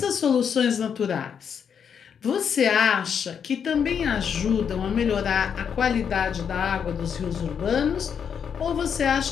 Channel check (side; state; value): right; quieter; 7.4 dB